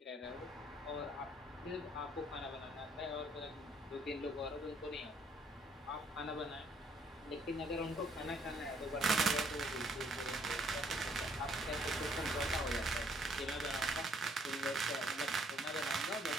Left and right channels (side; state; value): both; normal; correlation 0.65